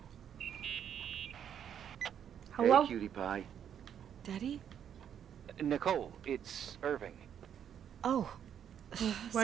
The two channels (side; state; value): left; quieter; 8.9 dB